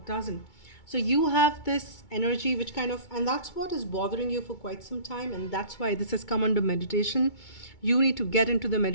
doesn't. So you have this energy which kind of, and that's what is bothering you for quite some time, and that's why this has come under meditation. You need to get into the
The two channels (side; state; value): right; late; 2.2 ms